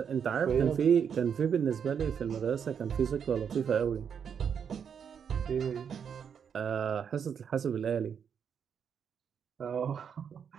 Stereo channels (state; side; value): quieter; left; 7.4 dB